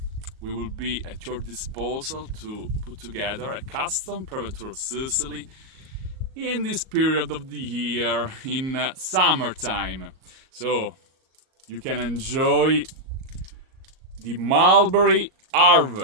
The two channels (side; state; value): left; late; 38 ms